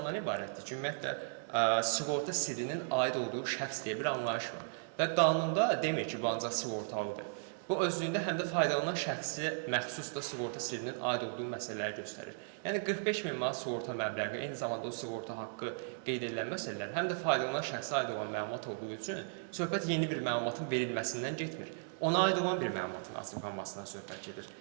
ibarətdir ki, ümumiyyətlə, sığorta sirrinin aid olduğu şəxs deyə bir anlayış var. Və qanunda demir ki, bu ancaq sığortalıdır. Bu özlüyündə həm də faydalanan şəxsi məxsus da sığorta sirrinin aid olduğu məsələləri göstərir. Yəni 45 min manat sığorta məbləği, eyni zamanda o sığorta haqqı qeyd edilən məsələlər həm də faydalanan şəxsə aid olan məlumat olduğu üçün söhbət yeni bir məlumatın verilməsindən getmir. Ona aid olan bir məlumatın açıqlanmasından söhbət gedir.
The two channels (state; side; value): silent; left; digital silence